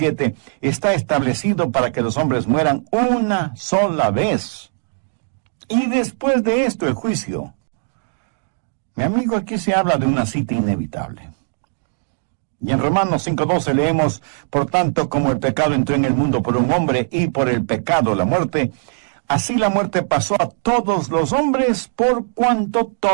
está establecido para que los hombres mueran una sola vez. Y después de esto el juicio. Mi amigo, aquí se habla de una cita inevitable. Y en Romanos 5:12 leemos, por tanto, como el pecado entró en el mundo por un hombre y por el pecado la muerte, así la muerte pasó a todos los hombres por cuanto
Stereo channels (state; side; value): silent; left; digital silence